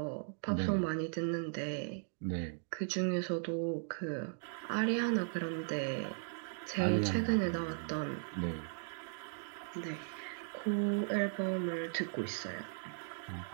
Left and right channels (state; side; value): silent; left; digital silence